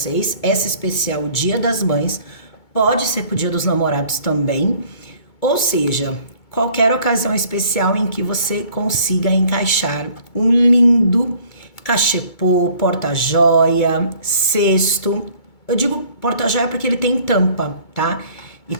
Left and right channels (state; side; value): late; right; 2.2 ms